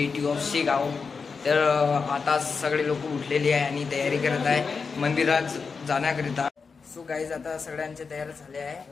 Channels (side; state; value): right; quieter; 5.1 dB